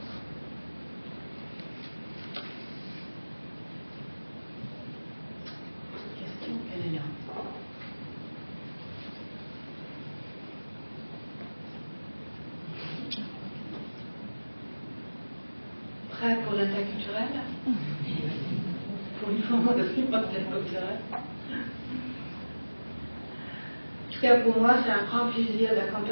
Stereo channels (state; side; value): inverted; both; correlation -1.00